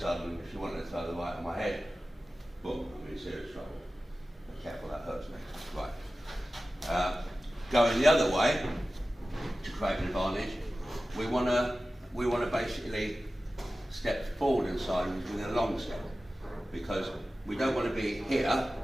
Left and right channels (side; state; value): both; normal; correlation 0.95